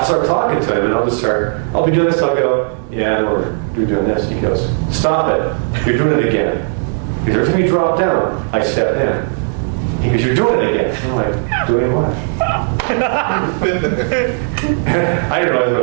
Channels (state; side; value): silent; left; 56 dB below the other